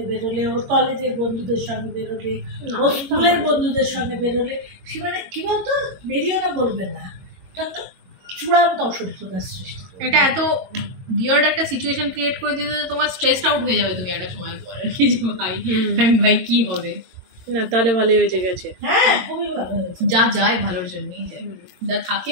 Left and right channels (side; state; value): left; late; 22 ms